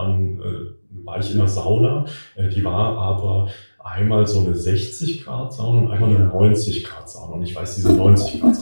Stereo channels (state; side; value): inverted; both; correlation -1.00